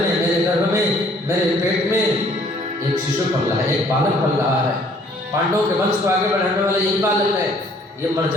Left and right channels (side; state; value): both; normal; correlation 0.60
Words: मेरे गर्भ में, मेरे पेट में एक शिशु पल रहा है, एक बालक पल रहा है। पांडवों के वंश को आगे बढ़ाने वाला यही बालक है, ये मर